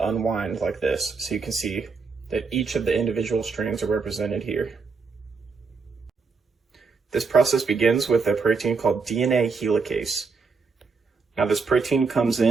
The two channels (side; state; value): left; quieter; 4.8 dB